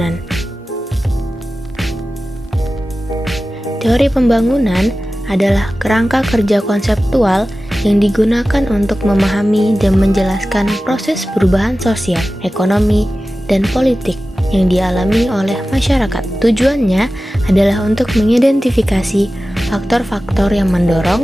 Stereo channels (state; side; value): normal; both; correlation 0.95